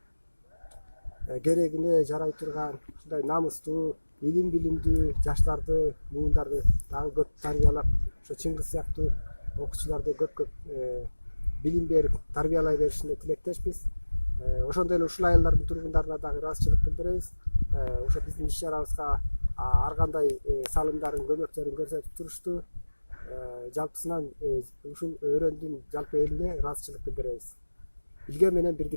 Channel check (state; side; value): inverted; both; correlation -1.00